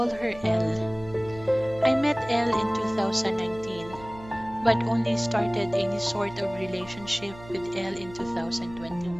her Elle. I met Elle in 2019, but only started any sort of relationship with Elle in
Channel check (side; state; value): right; noise; hum, 18 dB below the sound